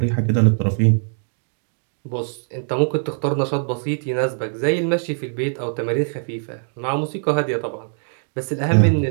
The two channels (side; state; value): left; silent; digital silence